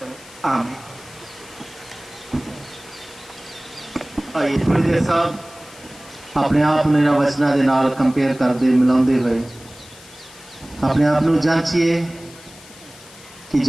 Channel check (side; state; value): left; noise; hiss, 21 dB below the sound